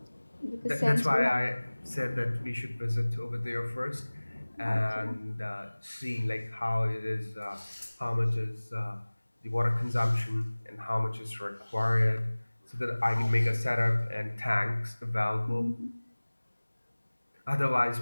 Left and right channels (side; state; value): both; inverted; correlation -1.00